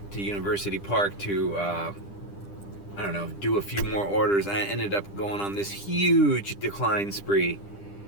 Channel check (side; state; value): right; late; 10 ms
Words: to University Park to, I don't know, do a few more orders. I ended up going on this huge decline spree.